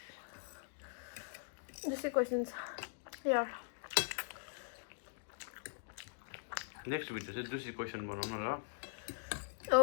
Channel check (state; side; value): silent; right; digital silence